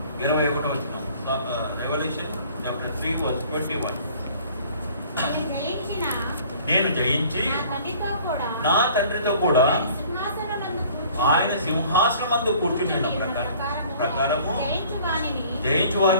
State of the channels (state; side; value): inverted; both; correlation -0.52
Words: 21వ వచనం. Revelation chapter 3:21. నేను జయించి నా తండ్రితో కూడా ఆయన సింహాసనమందు కూర్చుని ప్రకారము జయించు